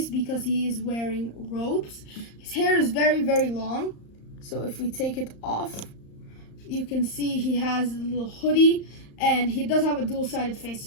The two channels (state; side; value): late; right; 35 ms